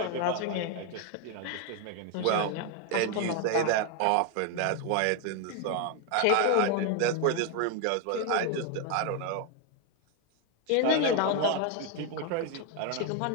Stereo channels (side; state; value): both; different; correlation 0.01